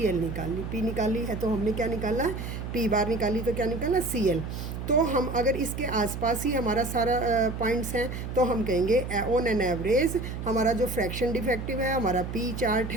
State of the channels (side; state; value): right; noise; hum, 6 dB below the sound